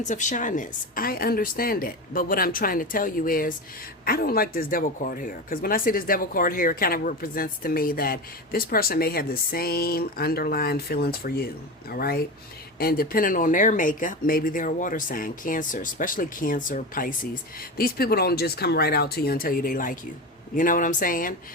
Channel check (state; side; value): normal; both; correlation 0.24